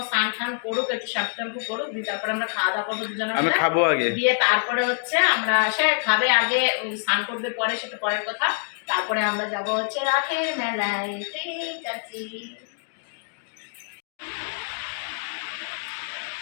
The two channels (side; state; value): right; silent; 61 dB below the other